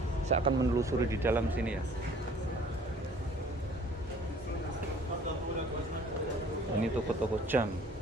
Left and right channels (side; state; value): both; normal; correlation 0.53